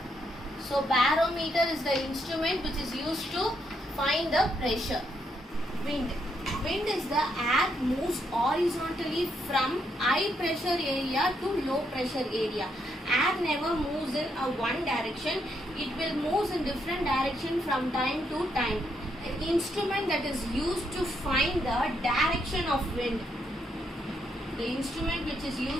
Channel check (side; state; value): both; normal; correlation 0.77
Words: So barometer is the instrument which is used to find the pressure. Wind. Wind is the air moves horizontally from high pressure area to low pressure area. Air never moves in a one direction. It will move in different direction from time to time. An instrument that is used to find the direction of wind. The instrument which is